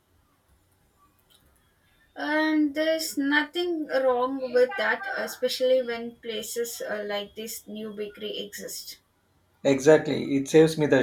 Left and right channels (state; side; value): identical; both; correlation 1.00